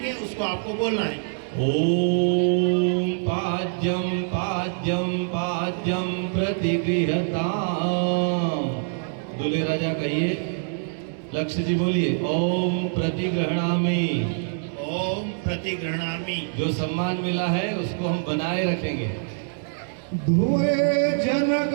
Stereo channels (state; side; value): silent; left; digital silence